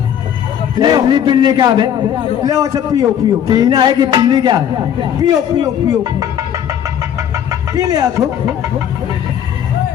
इल्ली पिल्ली क्या है? ले अच्छा पियो पियो पीना है कि पीनी क्या है? पियो पियो पियो पी ले आखो।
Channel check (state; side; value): quieter; right; 9.5 dB